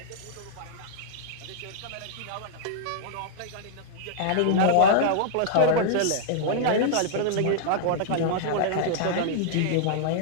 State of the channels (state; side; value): different; both; correlation -0.01